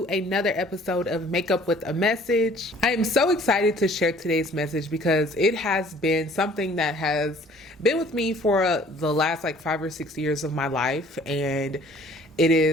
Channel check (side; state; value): both; normal; correlation 0.54